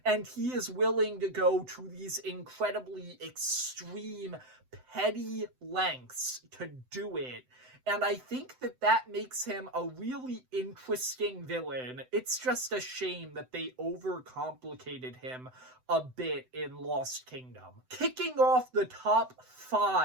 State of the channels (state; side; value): late; left; 7.9 ms